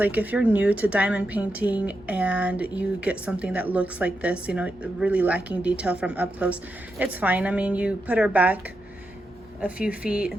If you're new to diamond painting and you get something that looks like this, you know, really lacking detail from up close, it's fine. I mean, you put her back a few feet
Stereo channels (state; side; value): normal; both; correlation 0.86